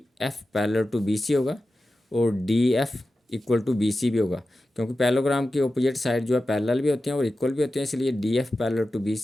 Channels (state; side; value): normal; both; correlation 0.93